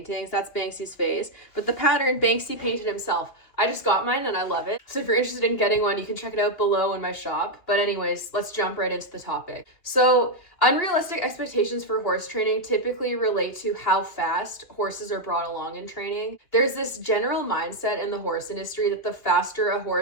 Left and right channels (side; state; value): right; late; 2.9 ms